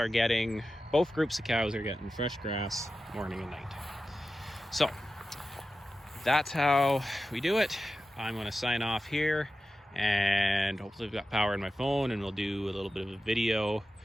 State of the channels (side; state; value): both; normal; correlation 0.93